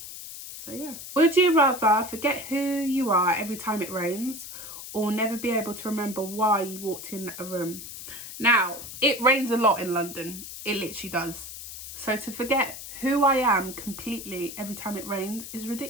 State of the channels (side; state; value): left; noise; hiss, 11 dB below the sound